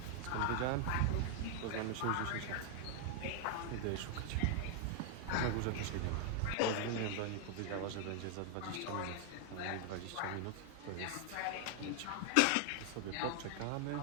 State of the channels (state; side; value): different; both; correlation 0.00